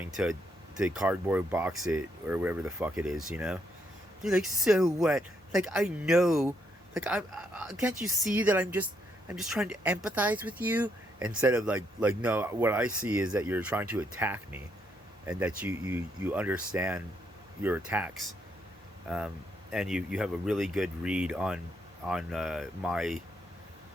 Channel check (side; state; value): both; normal; correlation 0.75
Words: to cardboard box it or whatever the fuck it is, you know. You're like, so what? Like, I know, like, I can't you see that I'm just trying to empathize with you, instead of like no, what I see is that you're trying to attack me, and that you understand your attacks, and you have a really good read on my